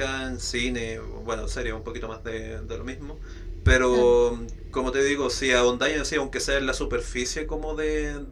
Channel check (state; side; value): identical; both; correlation 1.00